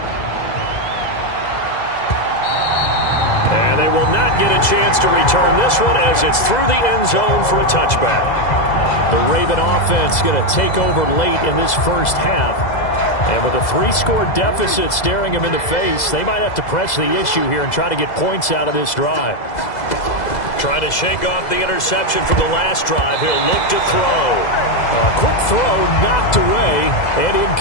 And they will not get a chance to return this one as it's through the end zone for a touchback. The Raven offense going to take over late in this first half. And with a 3-score deficit staring him in the face, they might have to press the issue here and try to get points out of this drive. Trying to shake off the interception from the last drive. He'll look to throw. A quick throw knocked away and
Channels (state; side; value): late; right; 2.0 ms